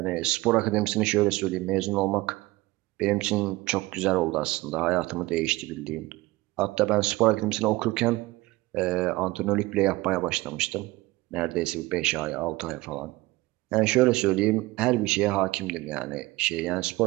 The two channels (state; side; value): quieter; left; 20.0 dB